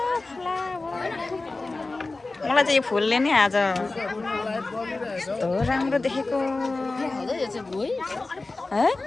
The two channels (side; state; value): right; quieter; 3.4 dB